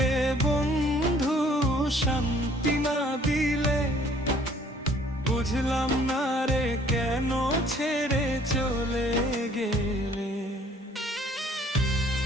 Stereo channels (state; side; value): normal; both; correlation 0.58